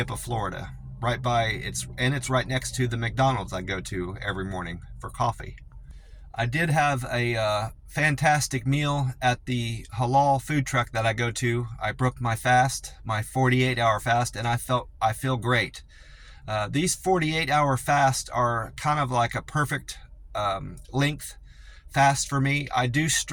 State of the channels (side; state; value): both; identical; correlation 1.00